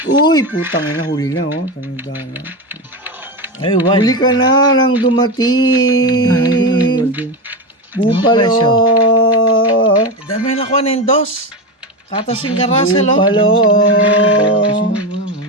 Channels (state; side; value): normal; both; correlation 0.17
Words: Uy, putang ina, huli na, oh. Tanda na. Ay, Huli ka na nang dumating. Bupalo. Dami na ko ng dos. Katasing ka, Russell, oh. Bupalo.